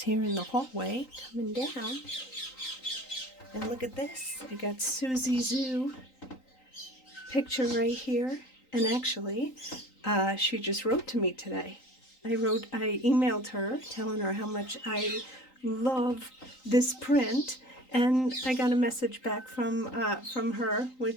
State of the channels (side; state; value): right; late; 3.9 ms